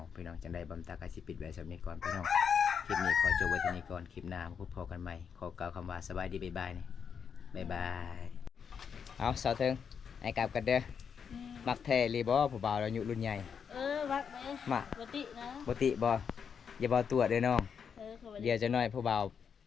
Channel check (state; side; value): quieter; right; 6.9 dB